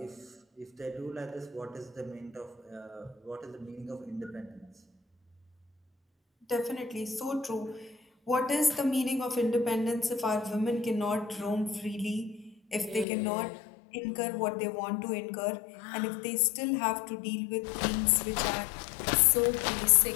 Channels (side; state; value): right; drops out; at 13.1 s